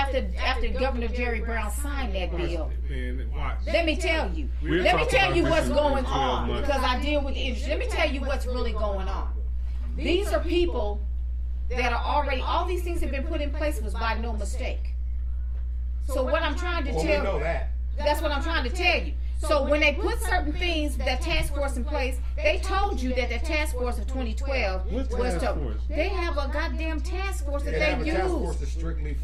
Governor Jerry Brown signed that bill. Man, watch. Let me tell you. We'll Let me talk tell about you this what's in going 12 on months. because I deal with the industry. Let me tell you what's really going on. These are people that are already. All these things have been put in place was by no mistake. So what I'm trying to Well, we tell know that. that's what I'm trying to tell you. So when they put certain things, that task force in place, they told you that the task force of 2012 What task force? They have a goddamn task force that They have a they task use. force that's strictly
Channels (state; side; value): identical; both; correlation 1.00